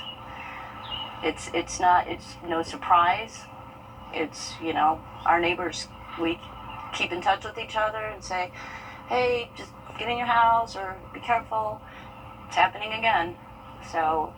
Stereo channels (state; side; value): identical; both; correlation 1.00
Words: It's no surprise. It's, our neighbors, we keep in touch with each other and say, hey, just get in your house or be careful. It's happening again. So,